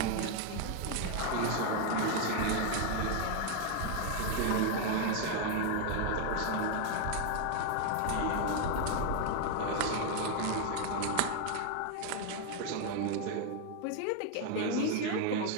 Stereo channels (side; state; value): both; different; correlation 0.00